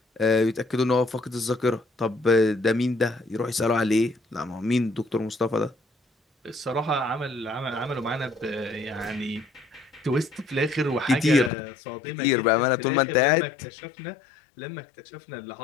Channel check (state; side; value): drops out; right; at 11.5 s